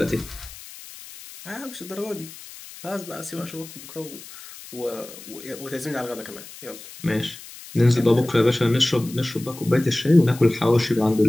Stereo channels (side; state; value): left; noise; hiss, 16 dB below the sound